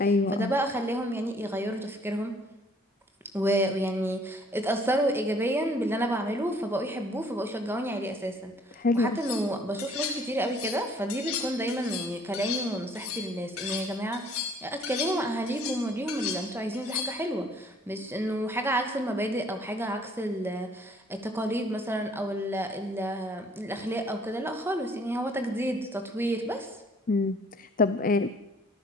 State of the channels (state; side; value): normal; both; correlation 0.59